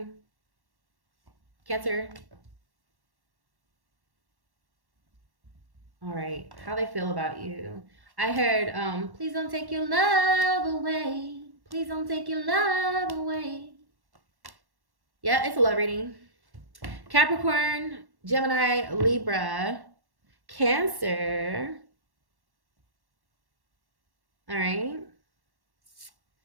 Cancer. All right. How they feel about you. I heard, please don't take your love away. Please don't take your love away. Yeah, it's a love reading. Capricorn, Gemini, Libra, Cancer. All right.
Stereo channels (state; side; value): late; left; 1.1 ms